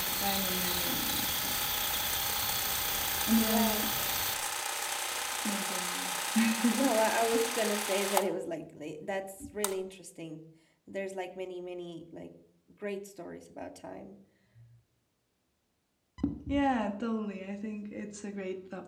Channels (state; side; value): identical; both; correlation 1.00